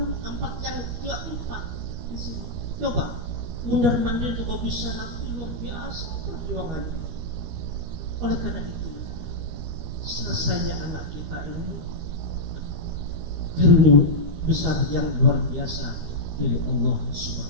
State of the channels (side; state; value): left; late; 13 ms